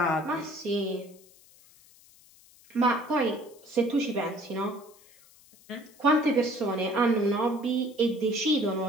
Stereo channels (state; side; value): noise; left; hiss, 26 dB below the sound